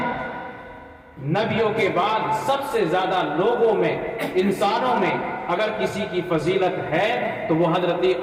نبیوں کے بعد سب سے زیادہ لوگوں میں، انسانوں میں اگر کسی کی فضیلت ہے تو وہ حضرت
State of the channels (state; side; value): identical; both; correlation 1.00